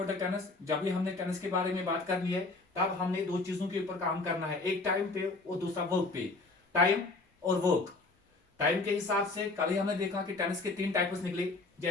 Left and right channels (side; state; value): right; quieter; 3.4 dB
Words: the tenses, जब भी हमने टेनिस के बारे में बात करनी है तब हमने दो चीजों के ऊपर काम करना है, एक टाइम पे और दूसरा वर्क पे। टाइम और वर्क। टाइम के हिसाब से कल ही हमने देखा कि टेनिस के 3 टाइप्स निकले।